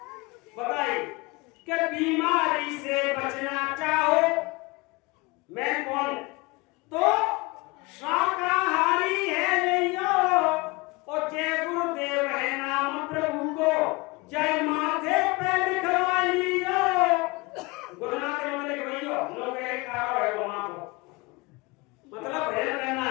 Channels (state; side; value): quieter; right; 25.1 dB